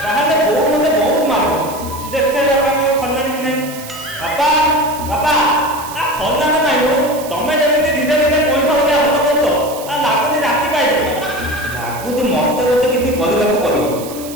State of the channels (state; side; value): noise; right; hiss, 14 dB below the sound